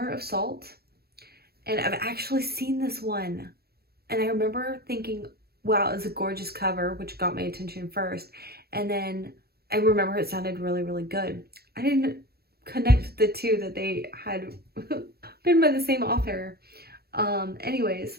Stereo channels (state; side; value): late; left; 0.46 ms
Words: of Salt, and I've actually seen this one, and I remember thinking, wow, it's a gorgeous cover, which got my attention first. And then I remember it sounded really, really good. I didn't connect the two, that they had been by the same author. Anyways,